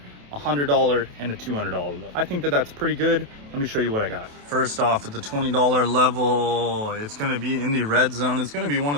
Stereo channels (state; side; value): late; left; 28 ms